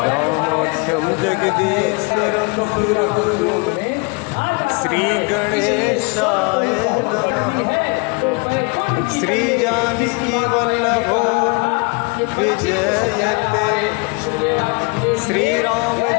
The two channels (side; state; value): right; quieter; 31.5 dB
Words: रामाख्यं जगदीश्वरं सुरगुरुं श्रीगणेशाय नमः। श्रीजानकीवल्लभो विजयते